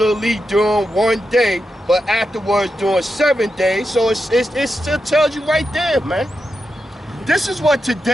during 1 day, but afterwards during 7 days. So it still tells you right there, man. This is what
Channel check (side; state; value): both; normal; correlation 0.88